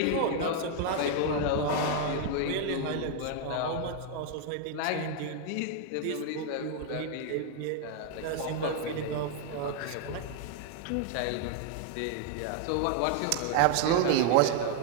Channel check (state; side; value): different; both; correlation 0.00